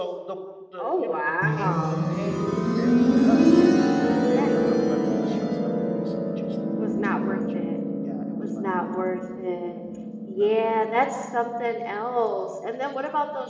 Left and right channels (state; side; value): identical; both; correlation 1.00